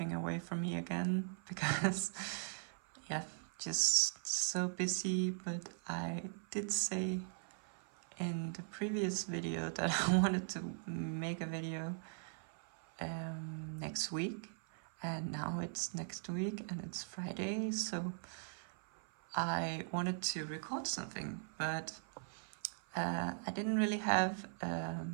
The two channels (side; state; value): left; silent; 51 dB below the other